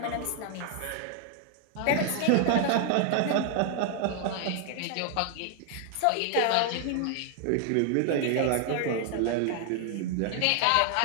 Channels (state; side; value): different; both; correlation 0.00